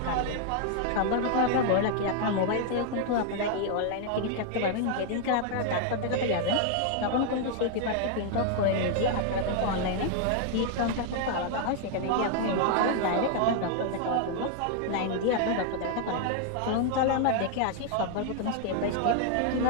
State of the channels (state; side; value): different; both; correlation 0.00